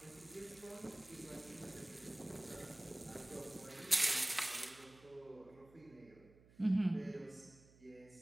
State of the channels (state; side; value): noise; right; hum, 24 dB below the sound